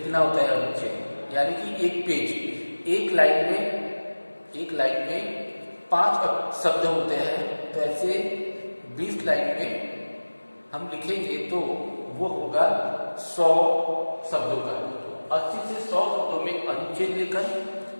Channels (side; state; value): both; inverted; correlation -1.00